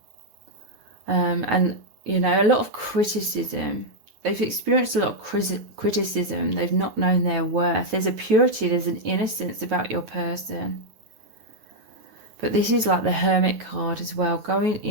And, you know, a lot of criticism. They've experienced a lot of criticism. They've not known their worth. There's a purity, there's an innocence about your person. But this is like the Hermit card as well. Going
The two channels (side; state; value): left; late; 9.2 ms